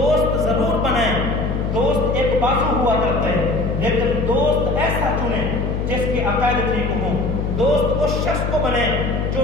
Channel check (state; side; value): noise; left; hum, 1 dB below the sound